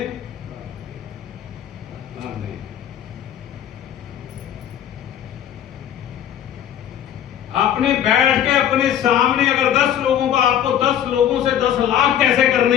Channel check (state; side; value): quieter; right; 10.3 dB